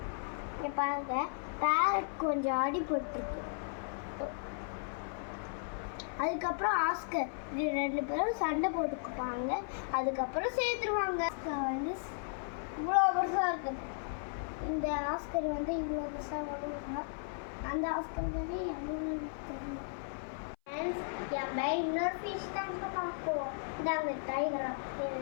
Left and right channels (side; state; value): right; silent; 54 dB below the other